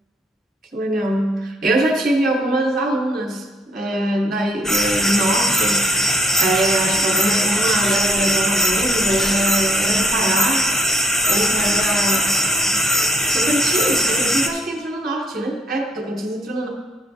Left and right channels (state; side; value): normal; both; correlation 0.65